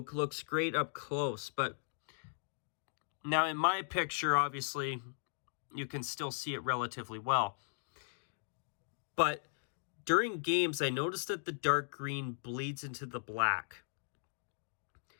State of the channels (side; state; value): right; silent; digital silence